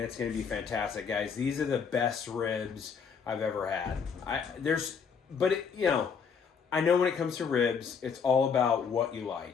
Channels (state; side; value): quieter; right; 6.3 dB